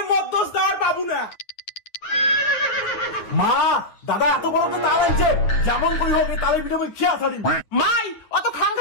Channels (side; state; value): right; late; 9.4 ms